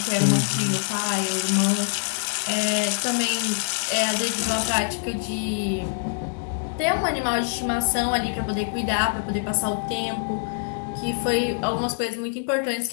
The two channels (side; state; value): right; silent; digital silence